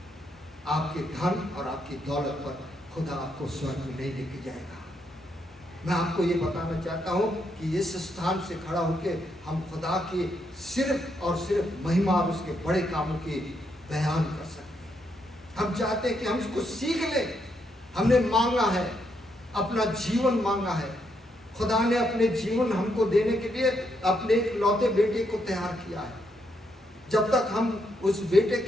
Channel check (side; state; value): both; normal; correlation 0.78